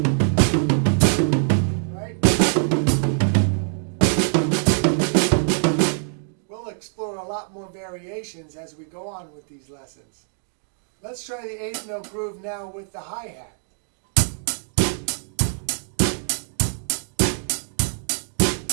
Right? We'll explore a lot more variations as we go on with these lessons. Let's try the 8th note groove now with the hi-hat.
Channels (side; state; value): left; silent; 61 dB below the other